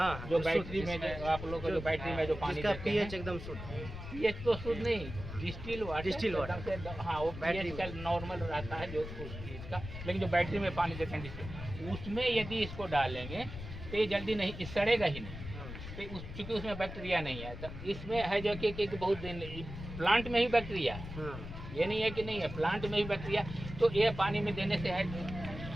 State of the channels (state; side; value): noise; left; rumble, 10 dB below the sound